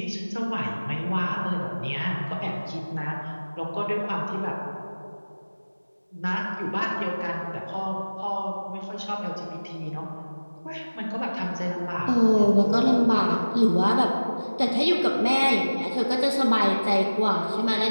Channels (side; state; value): both; inverted; correlation -1.00